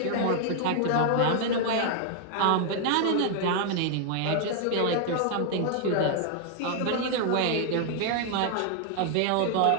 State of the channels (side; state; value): both; different; correlation 0.00